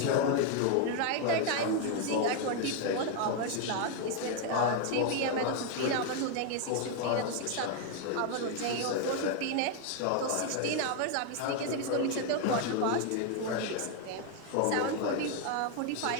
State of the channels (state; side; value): different; both; correlation 0.00